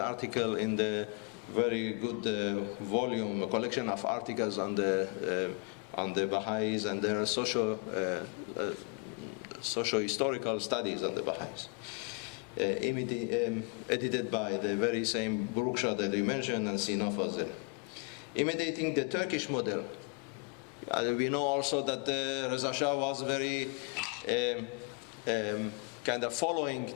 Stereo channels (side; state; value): right; quieter; 34.0 dB